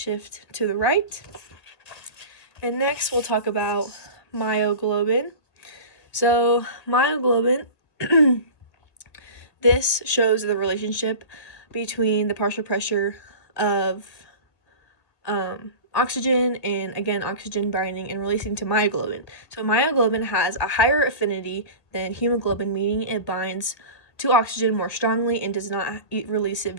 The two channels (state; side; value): late; right; 1.8 ms